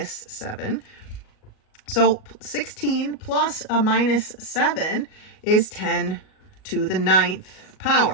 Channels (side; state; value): right; late; 38 ms